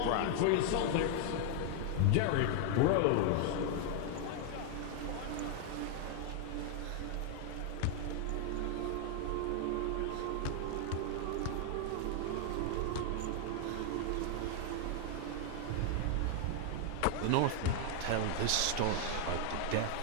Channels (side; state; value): both; different; correlation 0.00